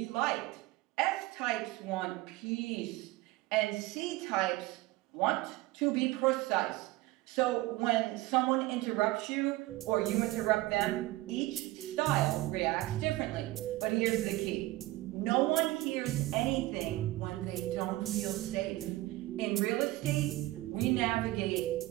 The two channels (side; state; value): left; quieter; 18.4 dB